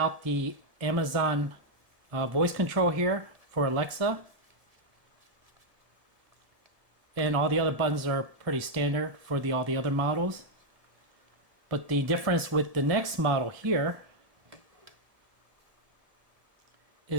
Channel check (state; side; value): late; left; 1.8 ms